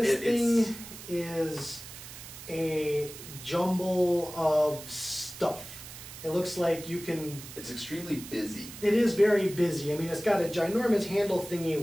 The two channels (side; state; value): right; noise; hiss, 14 dB below the sound